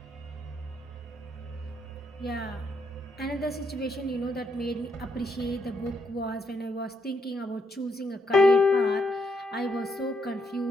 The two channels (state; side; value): normal; both; correlation 0.76